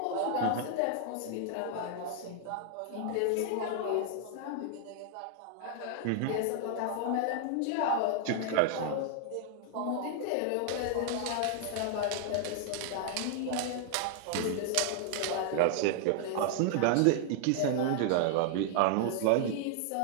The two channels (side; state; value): both; different; correlation 0.00